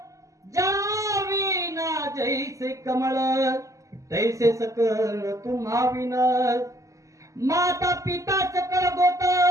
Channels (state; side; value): late; left; 0.16 ms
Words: जाविना जैसे कमळ, तैसे सकळ तुम्हा विन. माता पिता सकळ गोत,